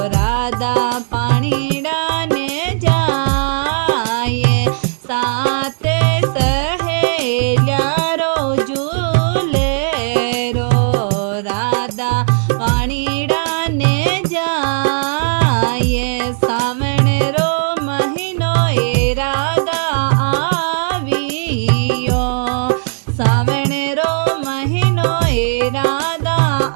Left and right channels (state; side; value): silent; left; digital silence